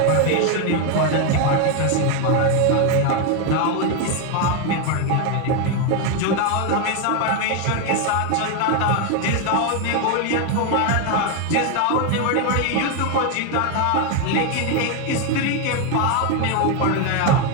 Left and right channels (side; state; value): both; different; correlation 0.01